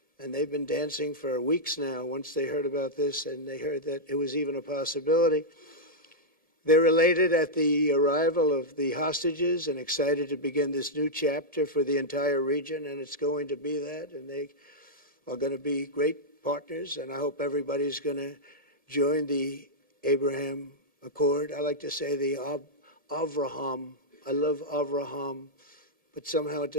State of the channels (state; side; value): late; left; 1.8 ms